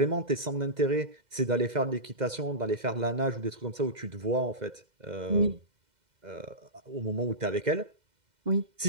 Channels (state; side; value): late; left; 2.0 ms